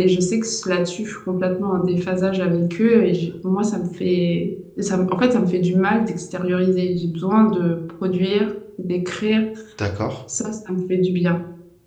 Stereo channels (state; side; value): identical; both; correlation 1.00